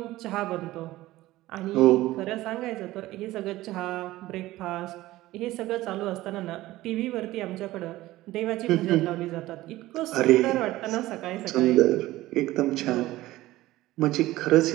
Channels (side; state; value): left; quieter; 16.9 dB